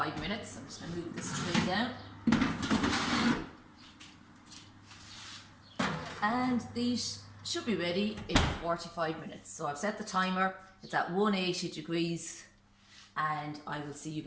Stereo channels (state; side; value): identical; both; correlation 1.00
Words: minutes. I'm just going to move this tray down. And these should be ready in 45 minutes. So I've set the timer, it's at 180 degrees, and I will see you